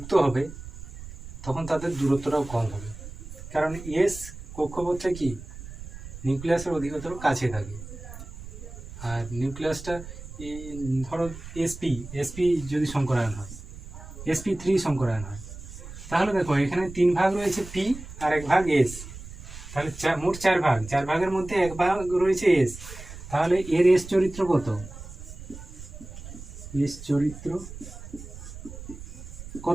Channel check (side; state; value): right; noise; rumble, 13 dB below the sound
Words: হবে তখন তাদের দূরত্বটাও কম হবে, কারণ এস কক্ষপথটা কি নিউক্লিয়াসের অধিকতর কাছে থাকে। আর নিউক্লিয়াসটা ধরো এসপি এসপি যদি সংকরায়ন হয়, sp3 সংকরায়ন হয়, তাহলে দেখো এখানে 3 ভাগ রয়েছে পি আর 1 ভাগ এস, তাহলে মোট 4 ভাগ, 4 ভাগের মধ্যে 1 ভাগ রয়েছে এস। তাহলে এর এস চরিত্র কত? এস চরিত্র